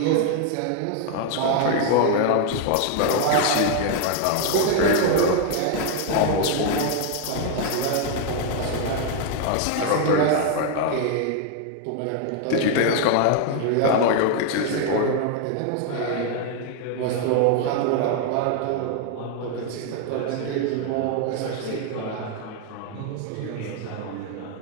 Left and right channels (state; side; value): different; both; correlation 0.00